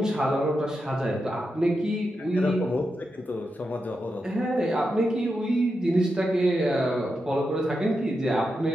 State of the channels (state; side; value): normal; both; correlation 0.87